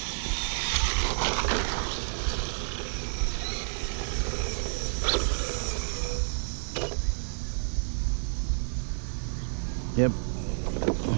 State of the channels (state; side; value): silent; left; digital silence